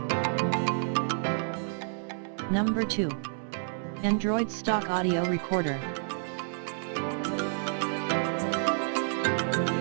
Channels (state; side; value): silent; left; 58 dB below the other